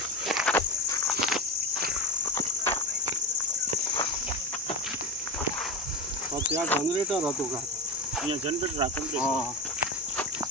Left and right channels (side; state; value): both; normal; correlation 0.21